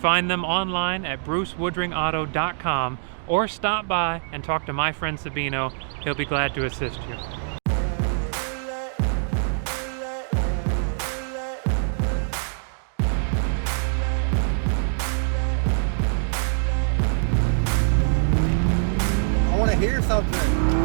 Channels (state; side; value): silent; left; digital silence